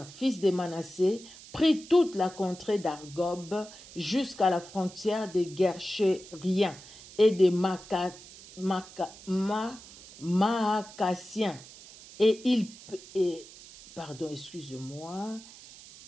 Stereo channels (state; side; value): noise; right; hiss, 18 dB below the sound